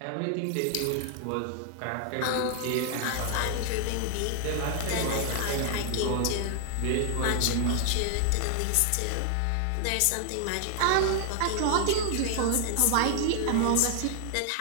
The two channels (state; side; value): different; both; correlation 0.00